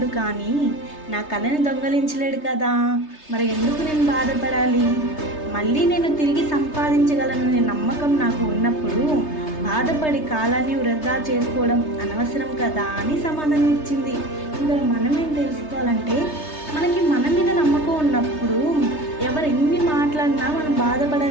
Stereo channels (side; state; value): right; late; 3.3 ms